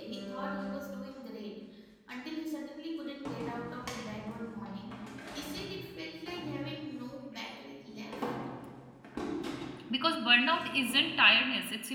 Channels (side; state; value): both; identical; correlation 1.00